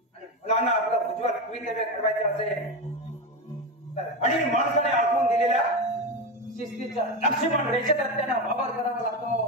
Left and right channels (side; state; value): both; normal; correlation 0.16